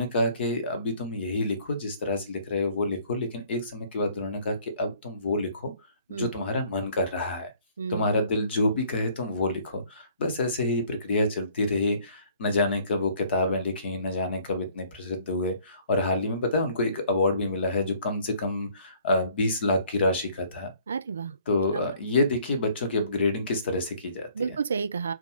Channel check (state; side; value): inverted; both; correlation -0.58